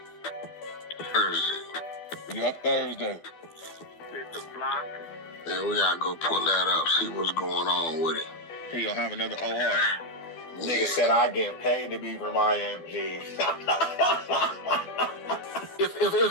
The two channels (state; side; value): late; right; 12 ms